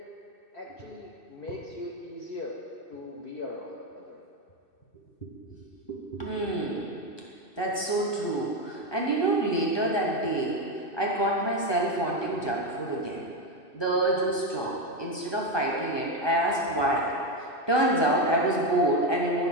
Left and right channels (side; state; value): right; late; 2.6 ms